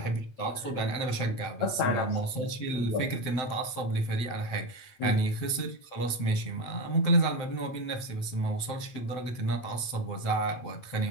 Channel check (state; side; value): late; right; 7.8 ms